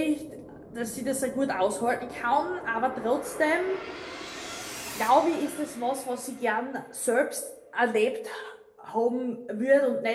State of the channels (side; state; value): both; identical; correlation 1.00